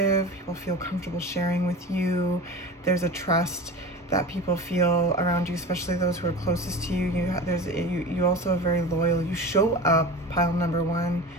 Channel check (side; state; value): both; normal; correlation 0.32